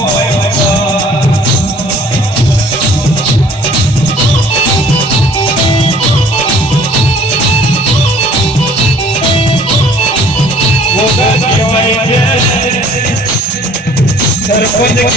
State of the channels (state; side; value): normal; both; correlation 0.54